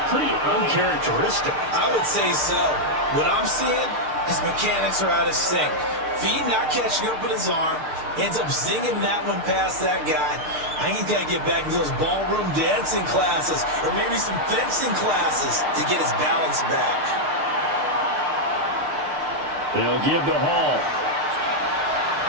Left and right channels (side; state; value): left; late; 6.6 ms